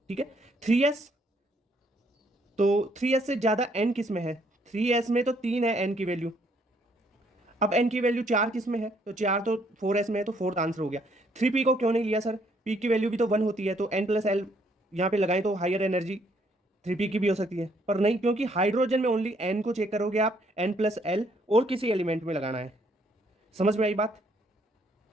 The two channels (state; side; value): normal; both; correlation 0.68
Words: ठीक है, 3s, तो 3s से ज्यादा n किस में है, 3s में तो 3 है n की वैल्यू, अब n की वैल्यू 4 किस में है, तो 4 तो 4s में है, तो फोर्थ आंसर हो गया। 3p को क्यों नहीं लिया सर, p की वैल्यू भी तो 1 होती है, तो n+L यहाँ पे लगाएं तो हायर एनर्जी 3p की भी हो सकती है, पर नहीं, क्योंकि हाइड्रोजन में ओनली n को चेक करोगे आप, n+L और किसी एलिमेंट में लगाना है। समझ में आई बात,